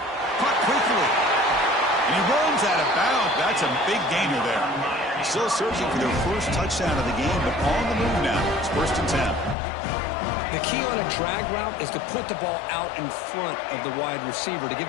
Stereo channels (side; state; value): right; drops out; at 9.6 s